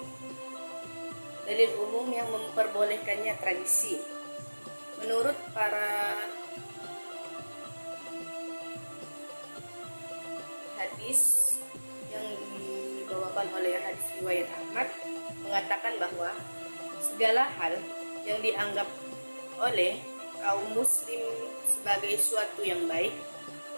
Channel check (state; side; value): inverted; both; correlation -1.00